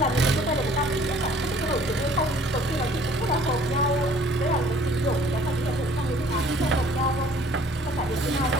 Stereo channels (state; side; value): normal; both; correlation 0.55